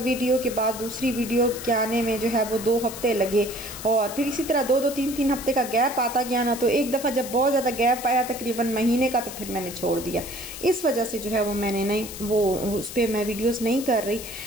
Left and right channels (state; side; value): noise; left; hiss, 11 dB below the sound